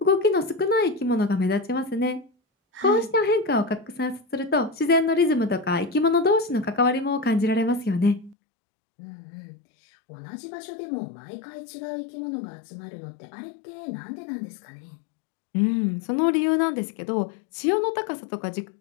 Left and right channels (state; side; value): drops out; right; at 8.3 s